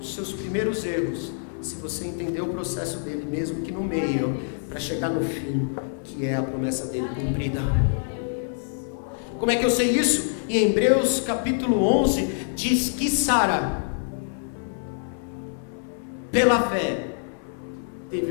seus primeiros erros, se você entender o processo dele, mesmo que no meio, para chegar no fim, que é a promessa dele cumprida. Como é que eu sei isso? Em Hebreus capítulo 11, diz que Sara, pela fé,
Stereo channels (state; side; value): silent; right; 61 dB below the other